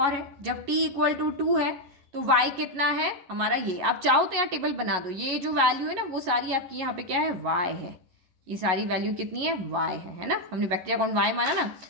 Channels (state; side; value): late; left; 11 ms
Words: है, जब t इक्वल टू 2 है तो y कितना है हमारा, ये आप चाहो तो यहाँ टेबल बना दो, ये जो वैल्यू है ना वो सारी आपकी यहाँ पे क्या है, y है, ये सारी वैल्यू कितनी है, y है ना, हमने बैक्टीरिया काउंट y माना ना।